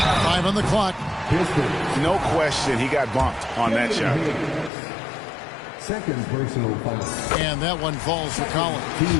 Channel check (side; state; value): right; drops out; at 4.7 s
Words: 5 on the clock. No question he got bumped on that shot. Second personal foul. And that one falls for Collins.